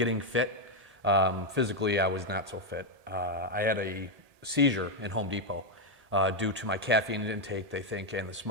fit. Physically, I was not so fit. I had a seizure in Home Depot due to my caffeine intake, they think, and the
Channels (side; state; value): left; late; 1.7 ms